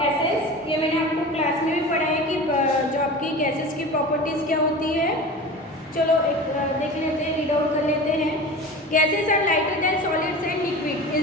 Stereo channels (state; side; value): normal; both; correlation 0.33